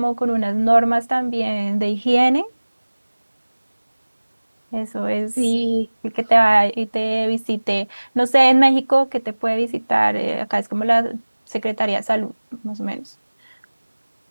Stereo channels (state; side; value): inverted; both; correlation -1.00